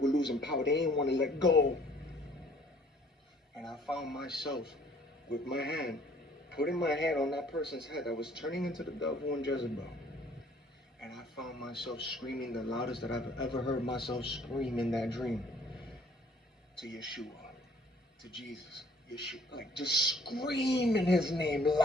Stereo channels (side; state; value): both; normal; correlation 0.58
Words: losing power. They didn't want to let go. And I found myself with my hand, putting my hand on that person's head that was turning into the devil and Jezebel. And I found myself screaming the loudest that I've ever heard myself scream in that dream. To Yeshua, to Jesus, Yeshua, like just screaming his name